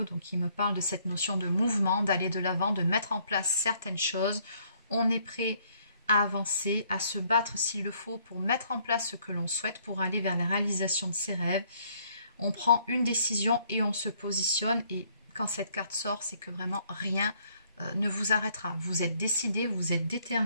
donc qui me parle de cette notion de mouvement, d'aller de l'avant, de mettre en place certaines choses. On est prêt à avancer, à se battre s'il le faut pour mettre en place ce que l'on souhaite, pour aller vers la réalisation de ses rêves. On prend une décision et on se positionne. Et quand cette carte sort, c'est que vraiment rien ne vous arrêtera. Vous êtes décidé, vous êtes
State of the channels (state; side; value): inverted; both; correlation -0.65